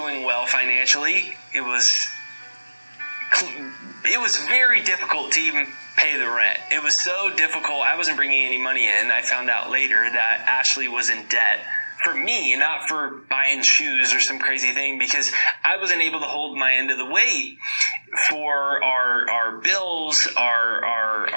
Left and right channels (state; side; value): inverted; both; correlation -1.00